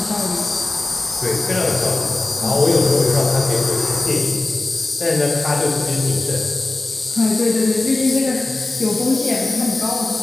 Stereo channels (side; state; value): right; quieter; 3.0 dB